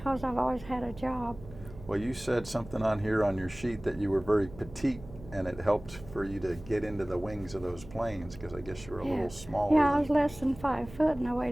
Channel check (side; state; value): right; noise; hum, 16 dB below the sound